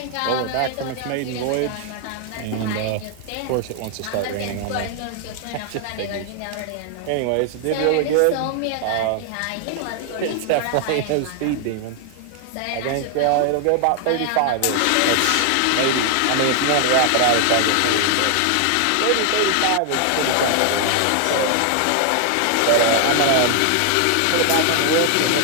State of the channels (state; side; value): different; both; correlation 0.00